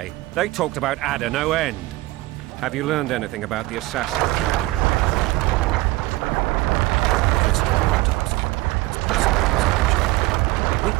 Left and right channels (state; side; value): quieter; left; 20.1 dB